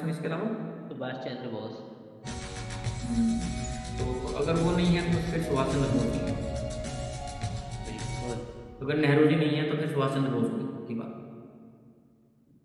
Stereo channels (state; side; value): identical; both; correlation 1.00